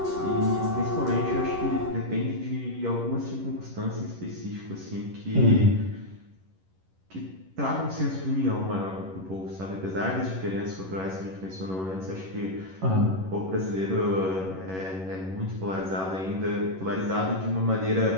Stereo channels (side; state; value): left; late; 11 ms